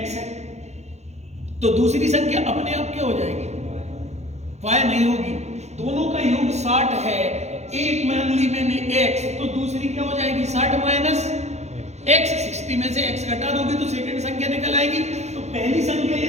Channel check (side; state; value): left; late; 0.32 ms